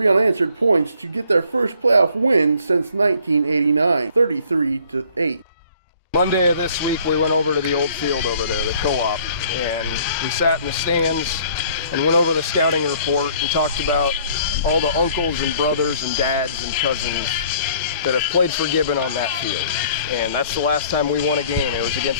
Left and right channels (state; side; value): inverted; both; correlation -0.57